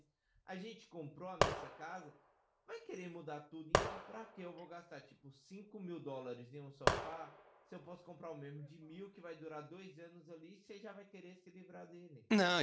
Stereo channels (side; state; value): both; identical; correlation 1.00